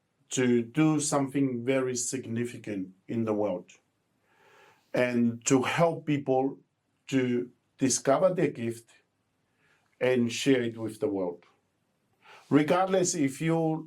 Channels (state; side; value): identical; both; correlation 1.00